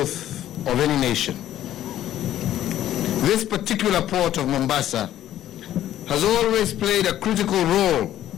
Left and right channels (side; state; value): right; quieter; 12.4 dB